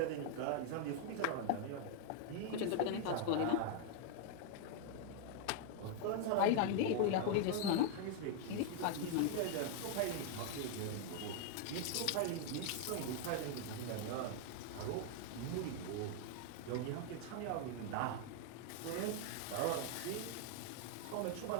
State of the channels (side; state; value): both; different; correlation 0.00